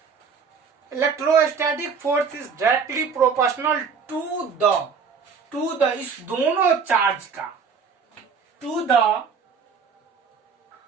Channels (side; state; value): left; quieter; 5.8 dB